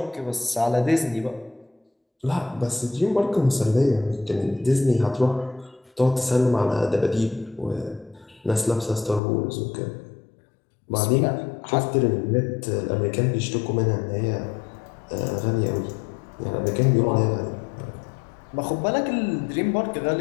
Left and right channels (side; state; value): right; drops out; at 9.2 s